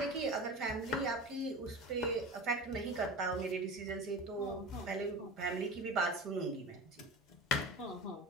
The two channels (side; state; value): both; normal; correlation 0.31